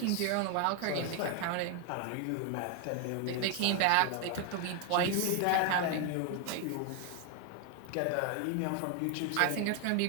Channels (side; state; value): both; different; correlation 0.01